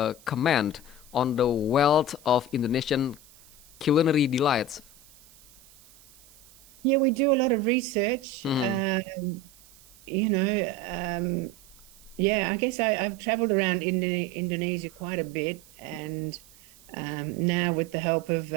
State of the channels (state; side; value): noise; right; hiss, 25 dB below the sound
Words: comment on the wealth of Indonesian culinary delights? Yeah, we do a lot of research. Hmm. You know, yeah, I guess I've traveled around Indonesia quite a bit, and now with the help of